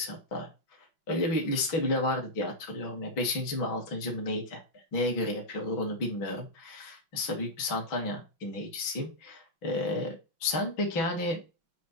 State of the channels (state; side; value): late; right; 6.1 ms